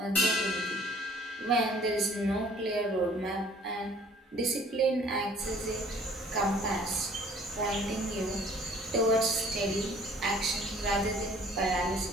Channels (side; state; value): both; normal; correlation 0.54